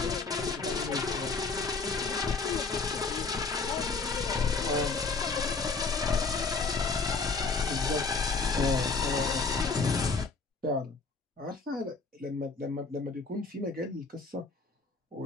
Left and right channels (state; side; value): quieter; right; 4.2 dB